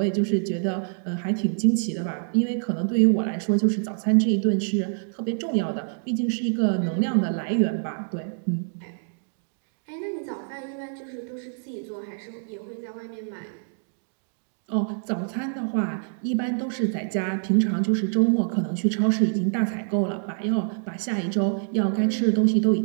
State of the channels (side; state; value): left; silent; digital silence